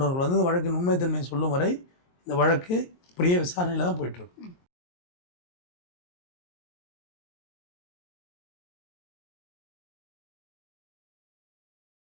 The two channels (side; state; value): right; late; 23 ms